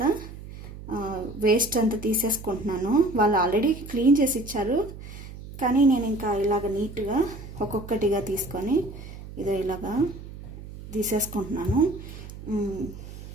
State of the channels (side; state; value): right; noise; hum, 13 dB below the sound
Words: వేస్ట్ అంతా తీసేసుకుంటున్నాను. వాళ్ళు ఆల్రెడీ క్లీన్ చేసి ఇచ్చారు, కానీ నేను ఇంకా ఇలాగ నీట్గా ఒక్కొక్కటిగా తీసుకొని ఇదో ఇలాగా తీసేసుకుంటున్నాను.